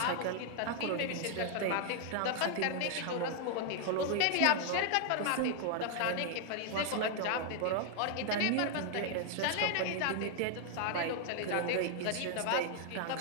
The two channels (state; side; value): different; both; correlation 0.00